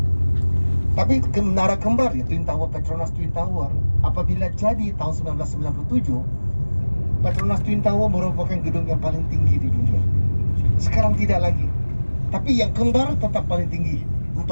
Tapi Menara Kembar ya, Twin Tower, Petronas Twin Tower, apabila jadi tahun 1997, Petronas Twin Tower merupakan gedung yang paling tinggi di dunia. Sekarang tidak lagi. Tapi yang kembar tetap paling tinggi,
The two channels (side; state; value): both; inverted; correlation -1.00